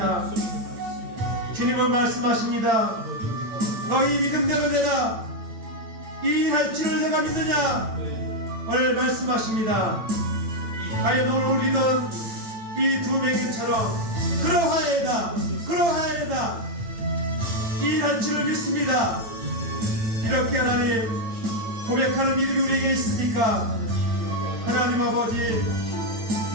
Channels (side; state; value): left; late; 8.9 ms